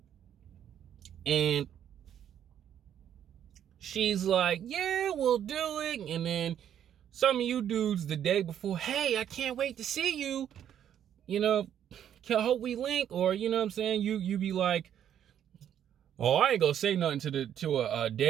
And she's like, yeah, we'll do it. And then some of you dudes the day before, hey, I can't wait to see you. You know, hope we link. Or, you know what I'm saying, you be like, oh, I ain't gonna say nothing to a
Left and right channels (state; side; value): quieter; left; 9.9 dB